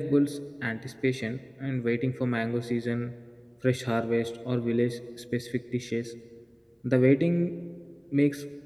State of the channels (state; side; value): identical; both; correlation 1.00